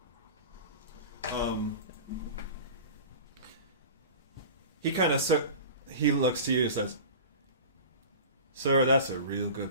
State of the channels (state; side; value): inverted; both; correlation -0.36